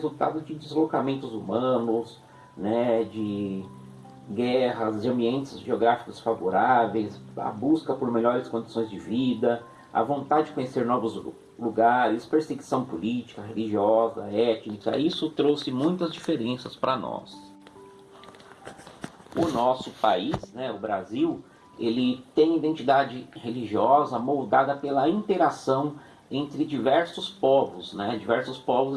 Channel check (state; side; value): identical; both; correlation 1.00